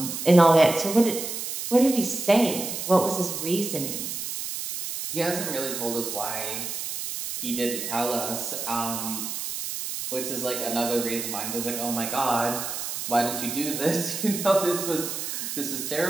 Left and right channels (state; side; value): noise; right; hiss, 5 dB below the sound